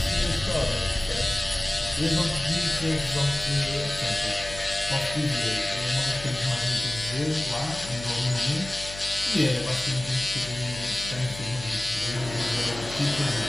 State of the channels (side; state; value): left; noise; hum, 13 dB below the sound